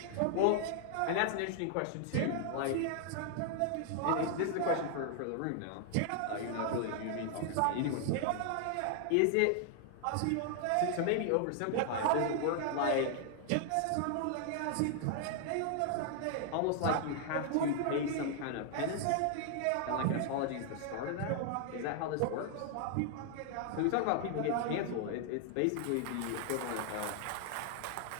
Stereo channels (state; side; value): different; both; correlation 0.00